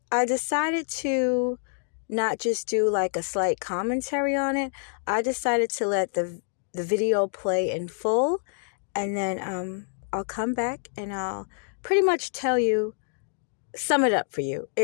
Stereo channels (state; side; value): silent; right; 60 dB below the other